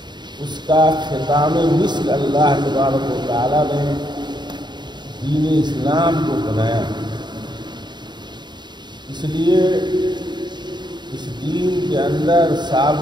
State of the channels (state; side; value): late; left; 0.21 ms